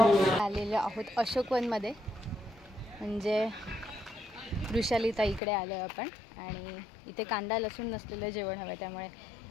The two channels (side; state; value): right; drops out; at 5.4 s